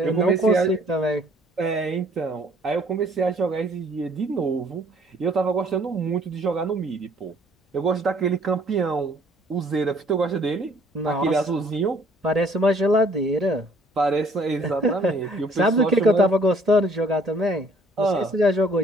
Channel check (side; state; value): both; normal; correlation 0.59